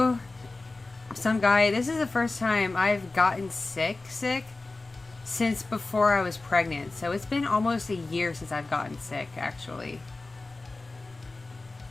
some guy, this is the first time I've gotten sick since before I was pregnant. So it's been almost a year since I've gotten sick, actually.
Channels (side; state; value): right; quieter; 3.3 dB